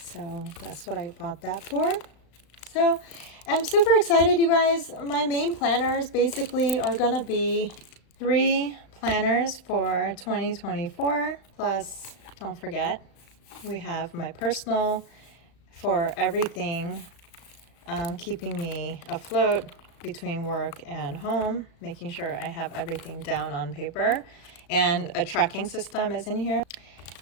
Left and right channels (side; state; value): right; late; 35 ms